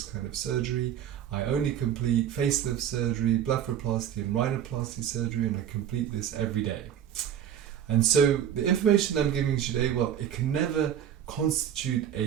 kind of surgery. I only complete facelift surgery, blepharoplasty and rhinoplasty surgery, and I complete this every day. And so the information I'm giving you today, it can never constitute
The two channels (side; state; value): left; quieter; 9.8 dB